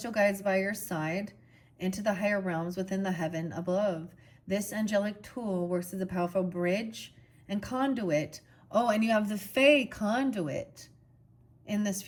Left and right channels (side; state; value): both; identical; correlation 1.00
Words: guides by your side into the higher realms within the heaven above. This angelic tool works as a powerful bridge and conduit. Oh, and you have the Fae conduit in this